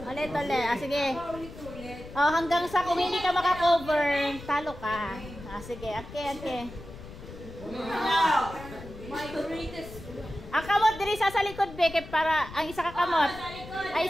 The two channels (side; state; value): left; noise; rumble, 14 dB below the sound